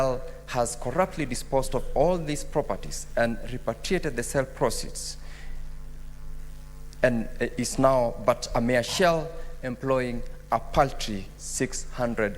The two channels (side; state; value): both; identical; correlation 1.00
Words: has corruptly disposed of all these properties and repatriated the sale proceeds, and is now but a mere shell, employing a paltry 600